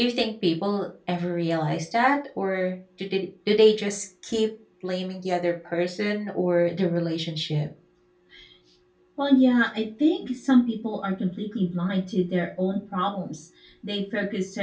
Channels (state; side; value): identical; both; correlation 1.00